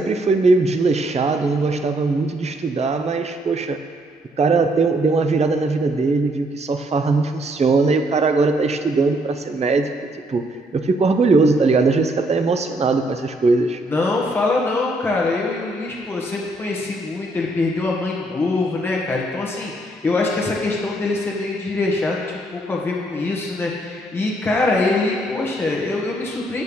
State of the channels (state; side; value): normal; both; correlation 0.70